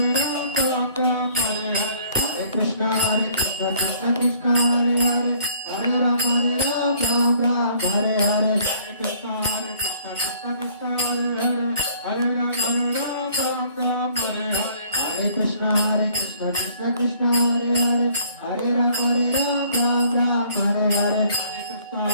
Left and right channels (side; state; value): both; inverted; correlation -0.59